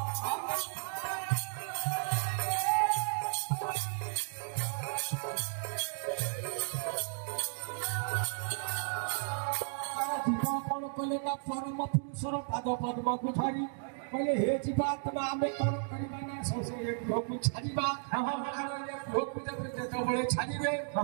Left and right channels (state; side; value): silent; left; digital silence